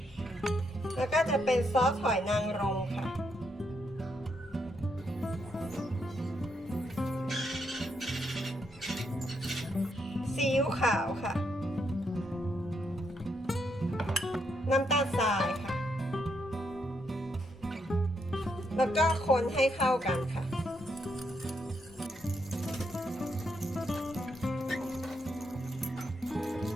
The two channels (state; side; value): normal; both; correlation 0.78